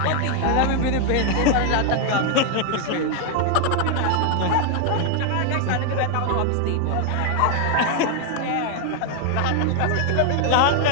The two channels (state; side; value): different; both; correlation 0.00